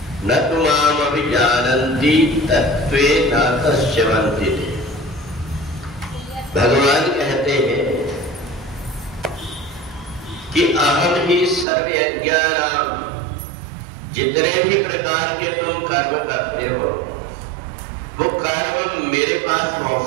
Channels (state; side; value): drops out; left; at 11.7 s